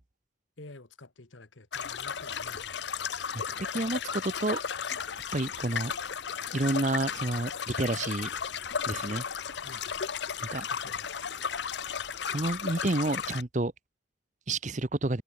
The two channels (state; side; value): normal; both; correlation 0.36